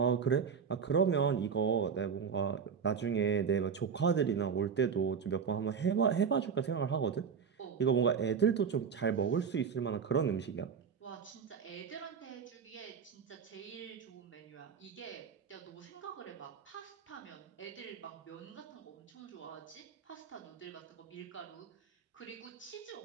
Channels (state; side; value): quieter; left; 6.5 dB